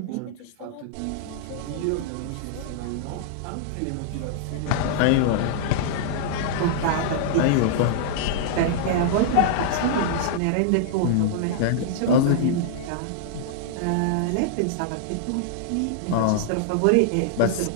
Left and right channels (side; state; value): both; different; correlation -0.01